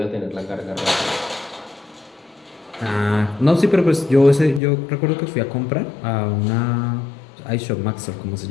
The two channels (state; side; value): drops out; right; at 4.6 s